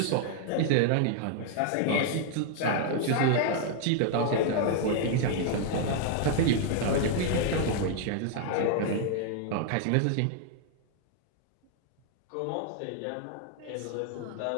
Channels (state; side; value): different; both; correlation 0.00